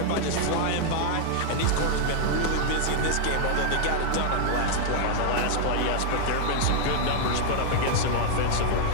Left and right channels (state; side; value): different; both; correlation 0.00